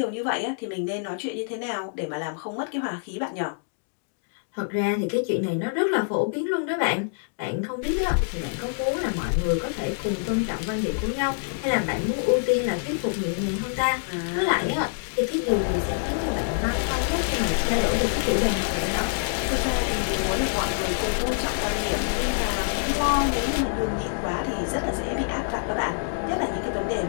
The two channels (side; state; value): right; silent; digital silence